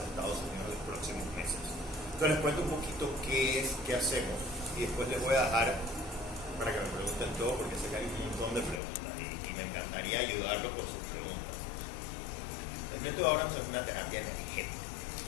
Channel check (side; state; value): right; drops out; at 8.8 s